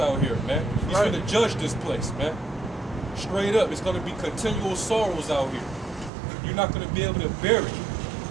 here, man. He's going to judge this place, man. Straight up, it's going to be continual sorrows out here. You're not going to be able to bear it.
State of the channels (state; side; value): drops out; left; at 6.1 s